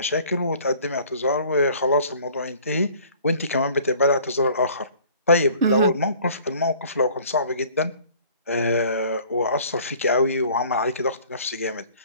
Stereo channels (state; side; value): inverted; both; correlation -0.52